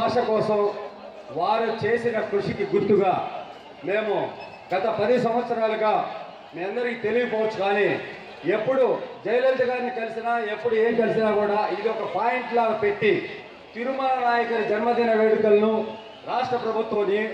కోసం వారు చేసిన కృషికి గుర్తుగా మేము గత 10 సంవత్సరాలుగా మీ అందరికీ తెలియకపోవచ్చు, కానీ ఎప్పుడు జయలలిత గారిని కలిసినా ఎప్పుడు ఏం కలిసినా కూడా ఇది ఒక పాయింట్ లాగా పెట్టి తిరుమల నాయకర్ జన్మదిన వేడుకలను రాష్ట్ర ప్రభుత్వం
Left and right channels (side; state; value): both; identical; correlation 1.00